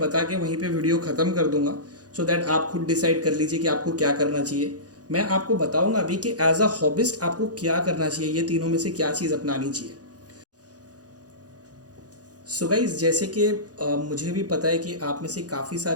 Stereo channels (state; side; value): late; left; 0.68 ms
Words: के वहीं पे वीडियो ख़त्म कर दूंगा, सो दैट आप खुद डिसाइड कर लीजिए कि आपको क्या करना चाहिए। मैं आपको बताऊंगा अभी कि एज अ हॉबिस्ट आपको क्या करना चाहिए, ये तीनों में से क्या चीज़ अपनानी चाहिए। सो गाइज, जैसे कि मुझे भी पता है कि आप में से काफ़ी